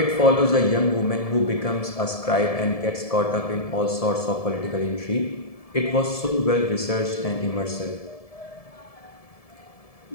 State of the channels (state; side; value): late; right; 1.7 ms